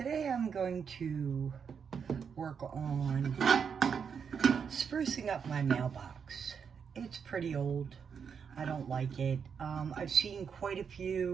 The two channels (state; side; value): quieter; left; 6.7 dB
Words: I'm going to work on sprucing up my mailbox. It's pretty old. I don't like it. I've seen quite a